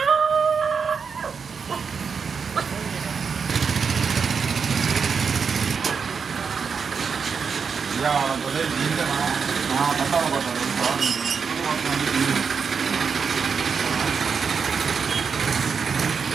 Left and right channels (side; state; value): left; quieter; 5.9 dB